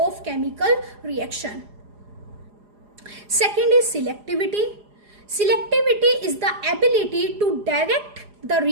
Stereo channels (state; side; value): late; left; 4.9 ms